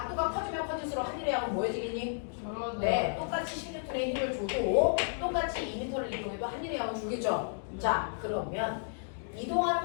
커지면 커질수록 하늘의 양은 뭐해지겠니? 네, 똑같이 16N의 힘을 줘도 똑같이 2m를 이동해도 하늘의 양은 줄겠죠? 자, 그러면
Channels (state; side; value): silent; right; digital silence